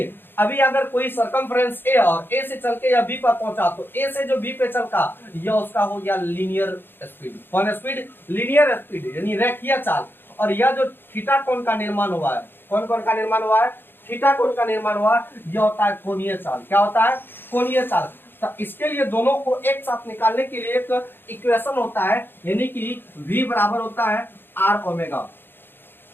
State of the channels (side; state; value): right; late; 0.10 ms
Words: अभी अगर कोई सरकमफ्रेंस ए और ए से चल के या बी पर पहुंचा, तो ए से जो बी पे चलता यह उसका हो गया लीनियर स्पीड। कौन स्पीड, लीनियर स्पीड, यानी रेखीय चाल। और यह जो थीटा कोण का निर्माण हुआ है, कौन कोण का निर्माण हुआ है, थीटा कोण का निर्माण हुआ, यह होता है कोणीय चाल। क्या होता है, कोणीय चाल। तो इसके लिए दोनों को एक साथ निकालने के लिए एक इक्वेशन होता है, यानी कि v बराबर होता है आर ओमेगा,